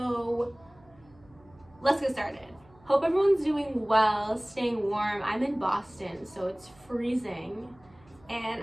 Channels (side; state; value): right; noise; hum, 28 dB below the sound